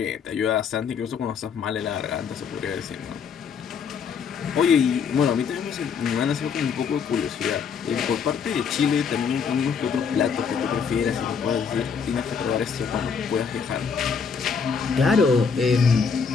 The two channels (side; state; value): right; quieter; 6.2 dB